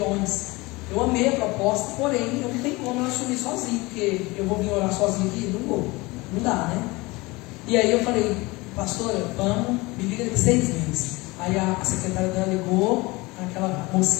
Eu amei a proposta, porém eu não tenho como eu assumir sozinho, porque eu vou vir orar sozinho aqui? Não vou, não dá, né? E aí eu falei, pastora, vamos, me liga daqui 6 meses. Aí a secretária dela ligou, aquela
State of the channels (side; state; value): right; quieter; 22.9 dB